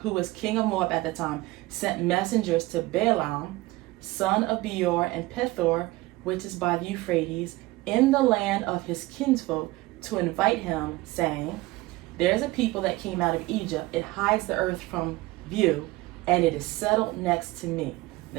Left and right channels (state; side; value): quieter; left; 20.0 dB